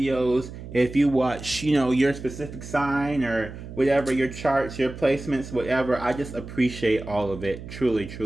if you watch, your specific sign or whatever, your charts, your placements, whatever. I just appreciate all of it. Truly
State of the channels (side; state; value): right; noise; hum, 12 dB below the sound